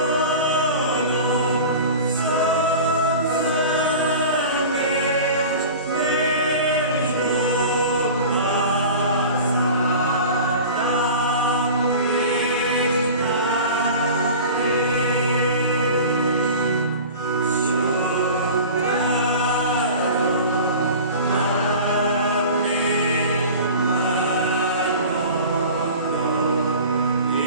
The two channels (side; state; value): both; inverted; correlation -0.37